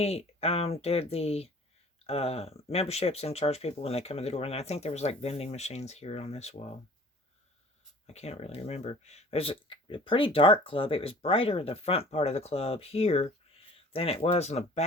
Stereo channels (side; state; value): both; normal; correlation 0.48